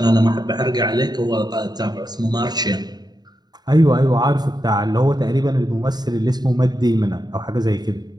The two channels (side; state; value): left; late; 0.20 ms